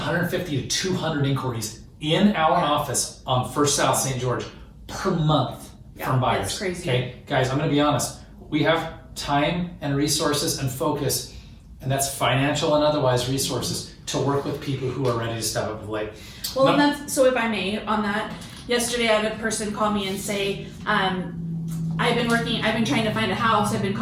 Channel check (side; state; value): both; identical; correlation 1.00